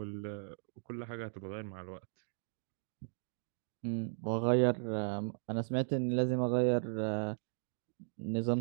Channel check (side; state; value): left; silent; digital silence